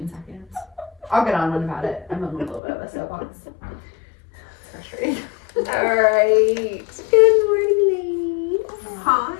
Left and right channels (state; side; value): drops out; right; at 2.6 s